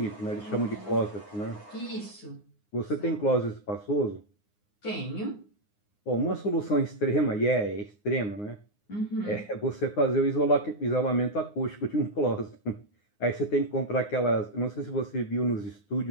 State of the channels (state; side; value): late; right; 9.7 ms